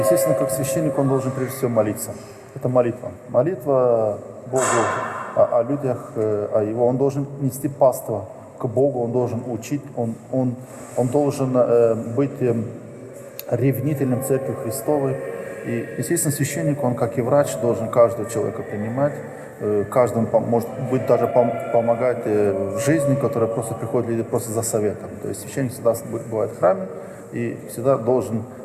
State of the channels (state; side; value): identical; both; correlation 1.00